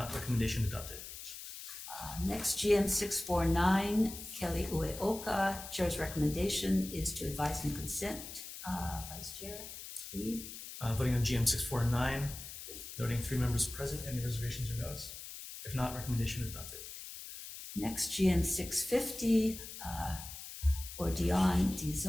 recommendation adopted. Next, GM 649, Kelly Ueoka. Chair's recommendation is to advise and consent. Vice Chair Lee. Voting on GM 649, noting 3 members present. Any reservations or no's? If not, recommendation adopted. Next, GM 650 for Dion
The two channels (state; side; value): noise; left; hiss, 11 dB below the sound